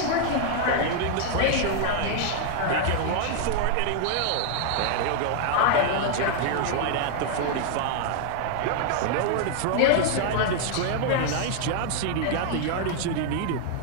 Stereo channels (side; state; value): both; different; correlation 0.00